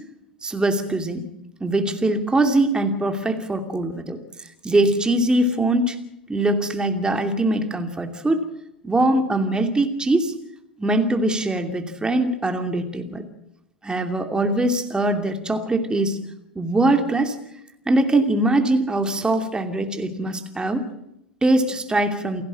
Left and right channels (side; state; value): both; normal; correlation 0.61